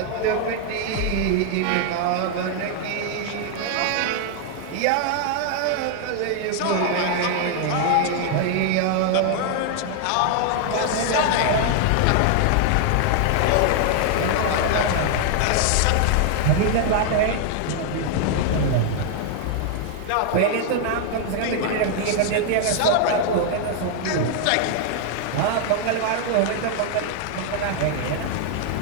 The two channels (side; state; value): both; different; correlation 0.00